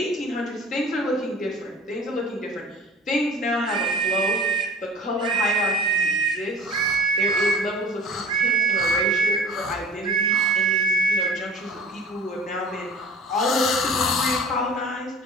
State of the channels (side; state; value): both; normal; correlation 0.43